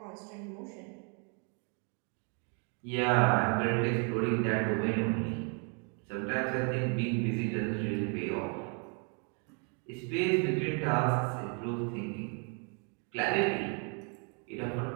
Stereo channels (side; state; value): left; quieter; 38.0 dB